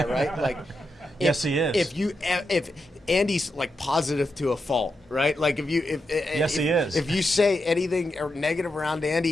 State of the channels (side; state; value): both; normal; correlation 0.86